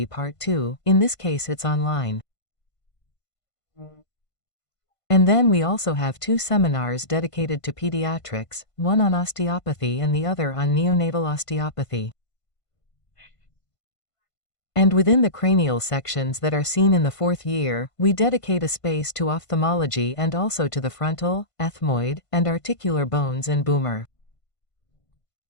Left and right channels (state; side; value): late; right; 1.5 ms